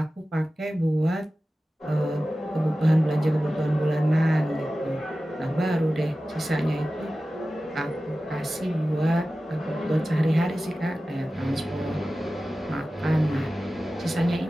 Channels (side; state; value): both; normal; correlation 0.95